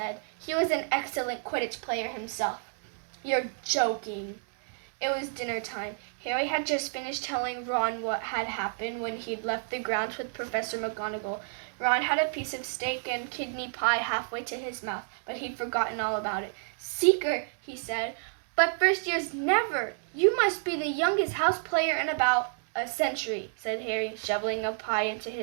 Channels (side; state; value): left; silent; digital silence